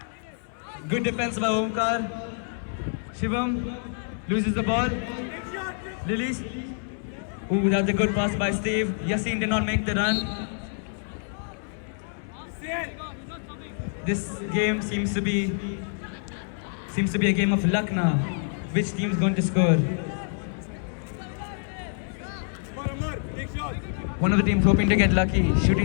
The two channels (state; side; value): silent; right; 60 dB below the other